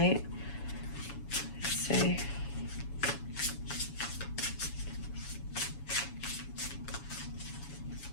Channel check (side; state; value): right; late; 7.1 ms